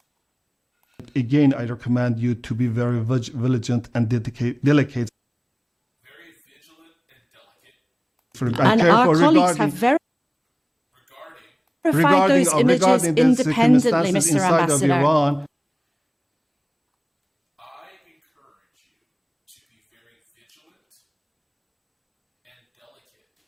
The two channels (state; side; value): identical; both; correlation 1.00